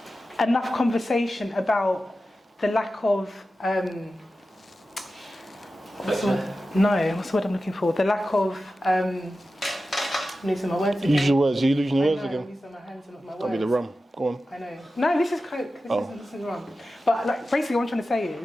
enough conversation about the lack of what's the word I'm looking for? The lack of I'm losing my words again. Use your words. Are you losing your words I'm again? using my hands and not my words. That'll be the rum. Go on. I know. No, this is Coke. This isn't rum. But like, basically, what I'm trying to say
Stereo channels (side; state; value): both; normal; correlation 0.93